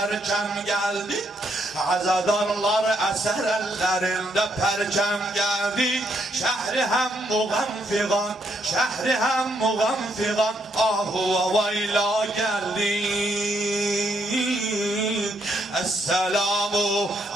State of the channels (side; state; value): both; normal; correlation 0.75